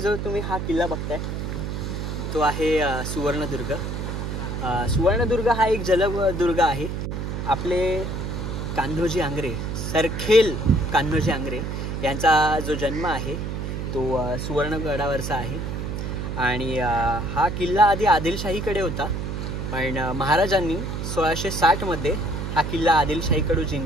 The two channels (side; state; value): right; noise; hum, 4 dB below the sound